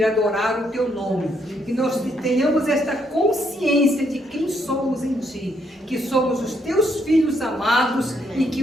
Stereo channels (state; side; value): normal; both; correlation 0.73